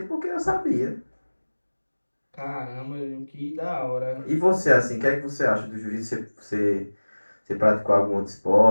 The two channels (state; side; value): inverted; both; correlation -1.00